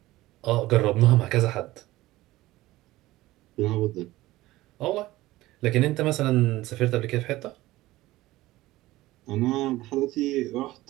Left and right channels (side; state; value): left; quieter; 17.6 dB